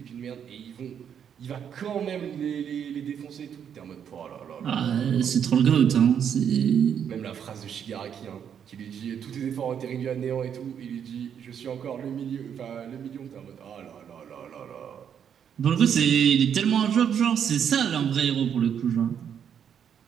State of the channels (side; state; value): left; quieter; 8.3 dB